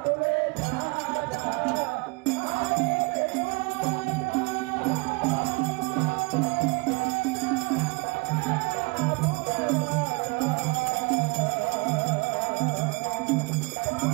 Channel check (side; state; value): left; quieter; 28.5 dB